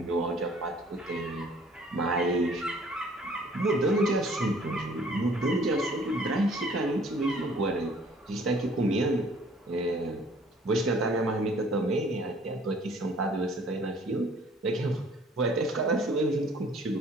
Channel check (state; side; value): normal; both; correlation 0.55